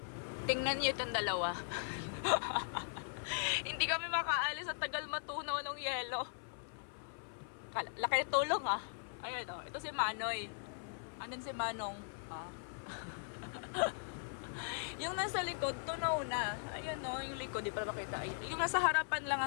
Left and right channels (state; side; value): silent; right; 51 dB below the other